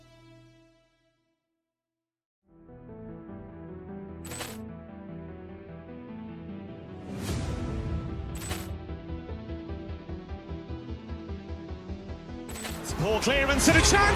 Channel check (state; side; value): identical; both; correlation 1.00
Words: Poor clearance and a